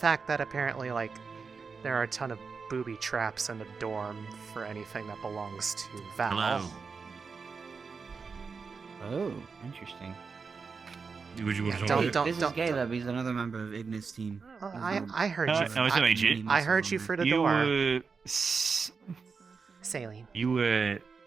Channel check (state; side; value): quieter; left; 5.1 dB